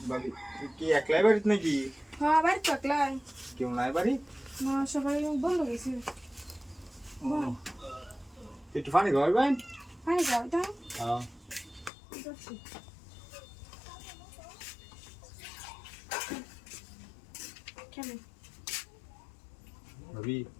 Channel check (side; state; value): right; drops out; at 11.9 s